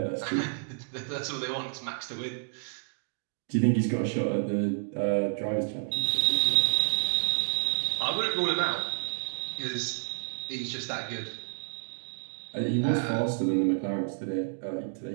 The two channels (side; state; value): left; silent; digital silence